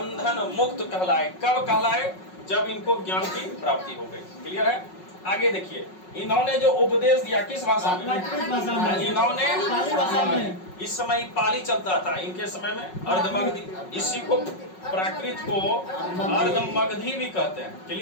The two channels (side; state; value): right; late; 5.4 ms